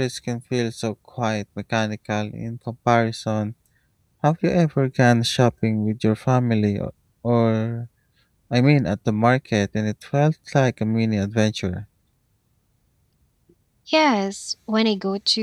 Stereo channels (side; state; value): both; identical; correlation 1.00